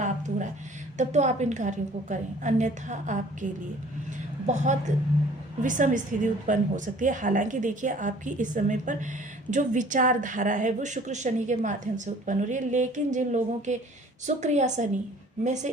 हो रहा है, तब तो आप इन कार्यों को करें, अन्यथा आपके लिए बहुत विषम स्थिति उत्पन्न हो सकती है। हालांकि देखिए आपकी इस समय पर जो विचारधारा है वो शुक्र शनि के माध्यम से उत्पन्न हो रही है, लेकिन जिन लोगों के शुक्र या शनि में से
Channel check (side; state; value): both; normal; correlation 0.52